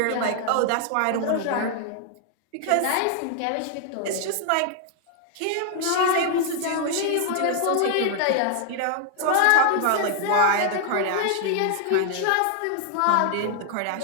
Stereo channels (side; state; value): both; different; correlation 0.00